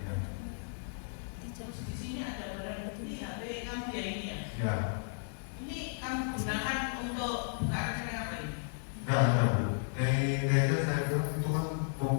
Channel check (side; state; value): right; silent; 55 dB below the other